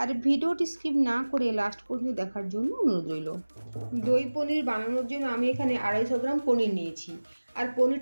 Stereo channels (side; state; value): both; inverted; correlation -1.00